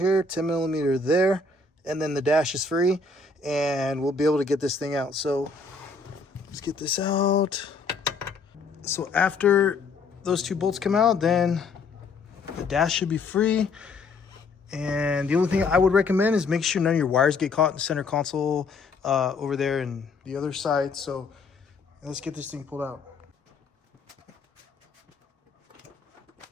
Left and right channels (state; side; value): quieter; right; 4.1 dB